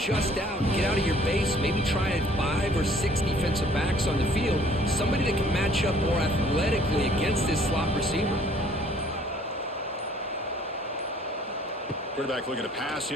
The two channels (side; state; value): both; normal; correlation 0.57